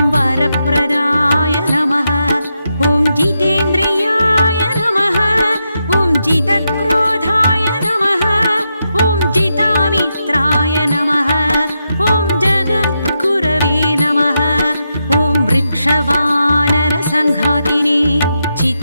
वरप्रदाय नमः। ॐ जितेन्द्रियाय नमः। ॐ जितक्रोधाय नमः। ॐ जितामित्राय नमः। ॐ जगद्गुरवे नमः। ॐ वृक्षवानरसङ्घातिने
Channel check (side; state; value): both; inverted; correlation -0.85